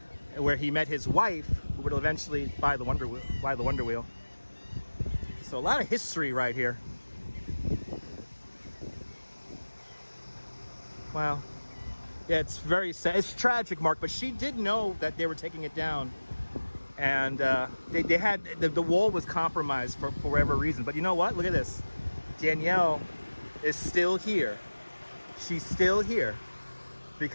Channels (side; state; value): both; inverted; correlation -1.00